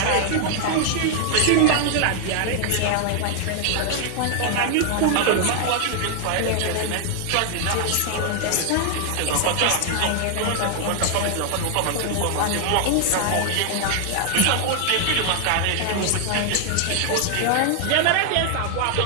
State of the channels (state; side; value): different; both; correlation 0.00